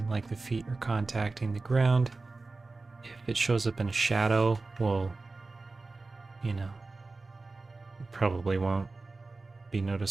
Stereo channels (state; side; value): quieter; left; 3.6 dB